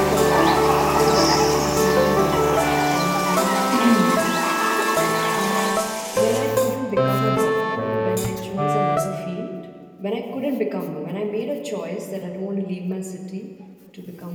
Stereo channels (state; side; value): identical; both; correlation 1.00